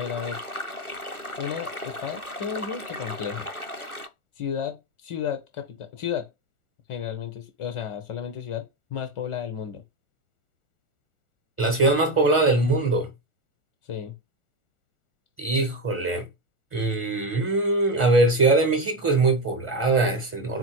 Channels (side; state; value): right; late; 1.4 ms